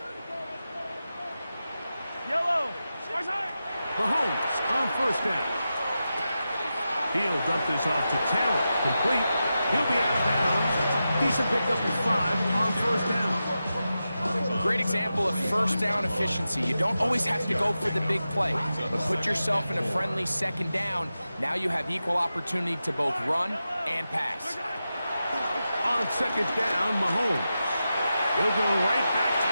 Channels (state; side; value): inverted; both; correlation -0.91